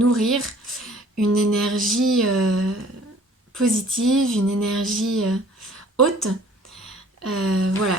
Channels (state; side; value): normal; both; correlation 0.53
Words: une énergie positive, une énergie haute,